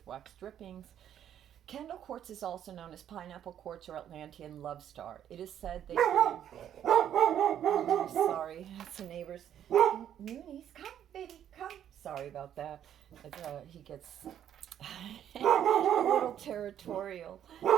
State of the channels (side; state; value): left; quieter; 10.1 dB